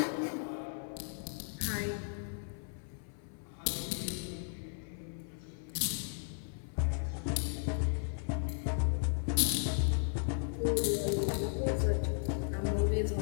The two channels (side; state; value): right; silent; 54 dB below the other